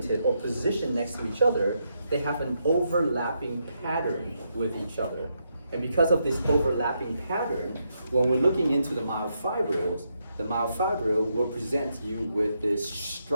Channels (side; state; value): both; inverted; correlation -0.80